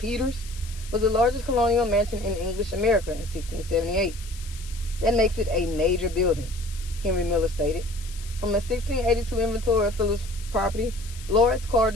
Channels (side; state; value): left; noise; hiss, 17 dB below the sound